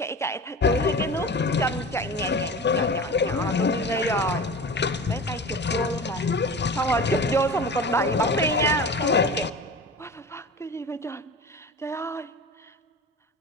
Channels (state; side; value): normal; both; correlation 0.33